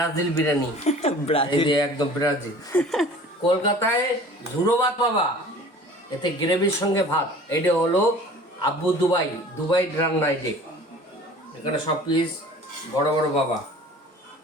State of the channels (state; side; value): normal; both; correlation 0.45